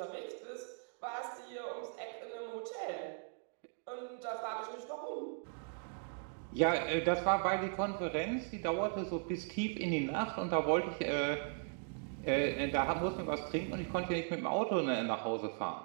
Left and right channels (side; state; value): left; silent; 52 dB below the other